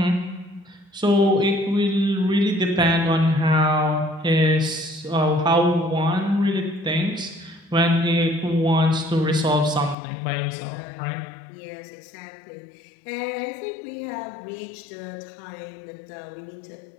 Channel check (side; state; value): right; drops out; at 10.0 s